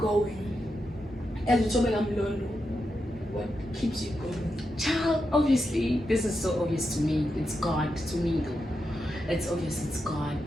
As Thobeka Mlondo, what keeps you going? Child, obviously, this is so obvious to me. It's God to me, though. It's obvious, it's God.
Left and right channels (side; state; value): both; normal; correlation 0.87